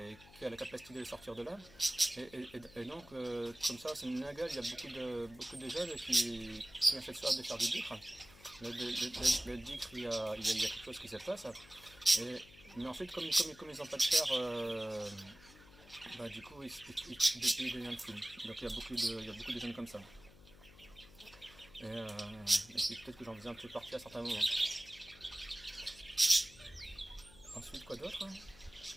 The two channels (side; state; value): left; noise; hum, 22 dB below the sound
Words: a la capacité de les sortir de là. Et donc, comme ça, c'est une nagale, il y a beaucoup de jeunes qui ont cette soif de faire du dhikr. Le dhikr, il y a quelque chose qui se passe. Mais ensuite, comme ils n'ont pas de chair, du coup, ils deviennent fous. Donc, il y a beaucoup de jeunes comme ça. Et peut-être que j'en faisais un peu partie à certains moments. Ensuite, quoi d'autre?